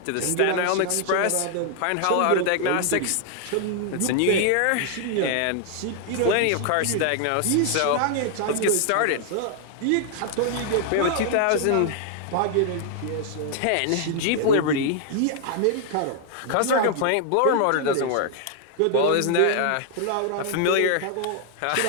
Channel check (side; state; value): both; different; correlation 0.00